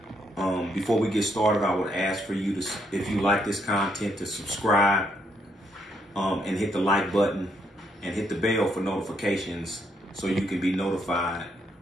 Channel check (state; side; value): normal; both; correlation 0.74